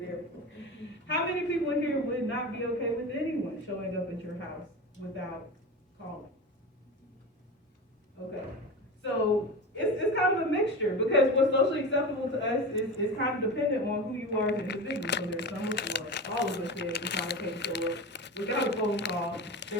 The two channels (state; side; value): normal; both; correlation 0.27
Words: for. How many people in here would not be okay with anyone showing up at your house without calling? Okay. So it's kind of a mixture because what's socially acceptable to us is kind of dependent on who you are as an individual. So there's some of all of us here it's not okay to show up without a phone call.